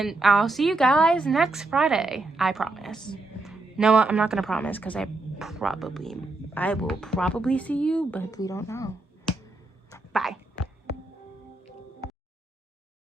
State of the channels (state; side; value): quieter; left; 3.1 dB